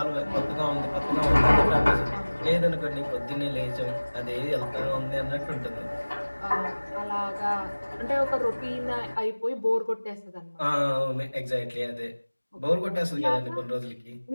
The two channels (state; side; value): inverted; both; correlation -1.00